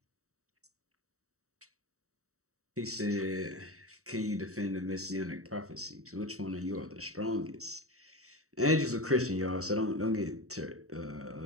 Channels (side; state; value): left; late; 0.64 ms